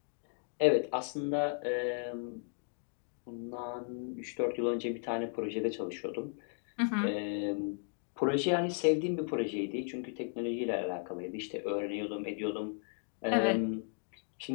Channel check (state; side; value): silent; right; 54 dB below the other